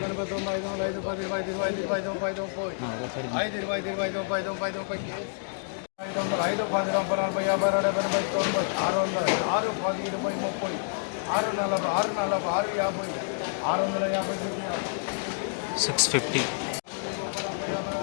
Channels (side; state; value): right; silent; digital silence